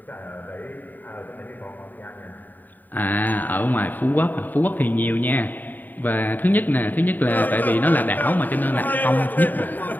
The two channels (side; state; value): right; late; 0.088 ms